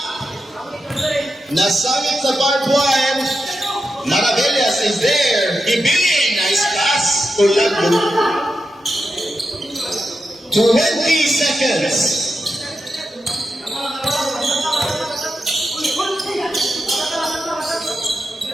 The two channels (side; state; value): both; normal; correlation 0.89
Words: Nasangit sa barbed wire. Maravillas is there. Ibili, nice pass. Tulagbo. 20 seconds.